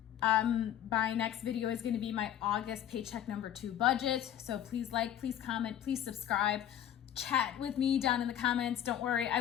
My next video is going to be my August paycheck number 2 budget. So please like, please comment, please subscribe. Chat with me down in the comments. Don't worry, I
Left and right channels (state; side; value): quieter; right; 10.7 dB